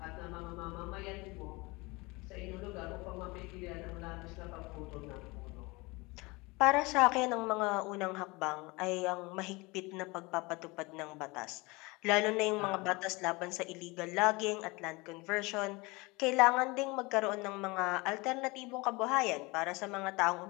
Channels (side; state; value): right; quieter; 24.7 dB